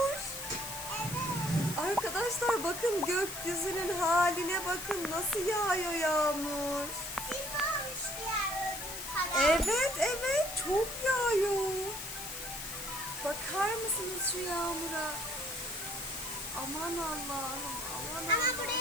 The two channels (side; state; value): left; noise; hiss, 8 dB below the sound